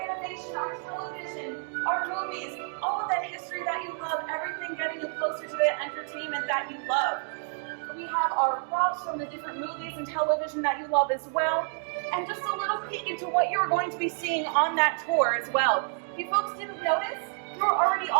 our television, our movies, all of that history that you love, everything getting you closer to the entertainment that you love. We have our props from the different movies and television that you love as well. And just a little peek into what you're going to be seeing on that tour as well. If you folks didn't notice, you're already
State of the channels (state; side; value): silent; left; 59 dB below the other